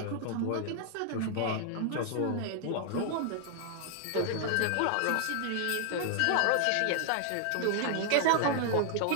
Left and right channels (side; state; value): both; different; correlation 0.00